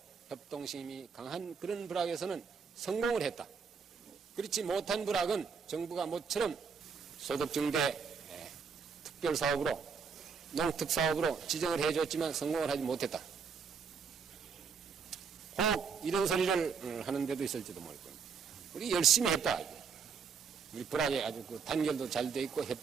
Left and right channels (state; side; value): quieter; left; 5.9 dB